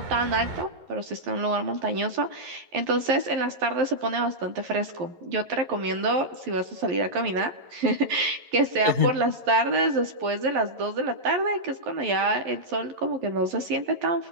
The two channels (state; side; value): late; left; 11 ms